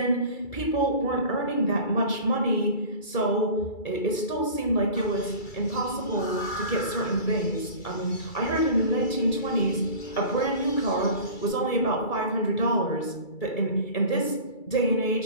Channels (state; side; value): late; right; 2.3 ms